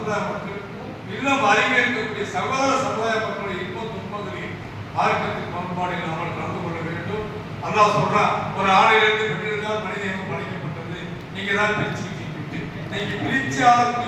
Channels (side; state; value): both; identical; correlation 1.00